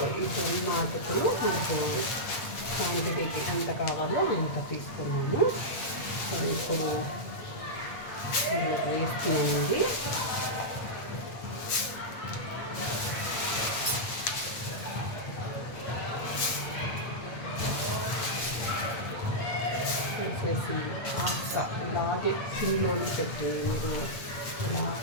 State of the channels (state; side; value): late; right; 8.7 ms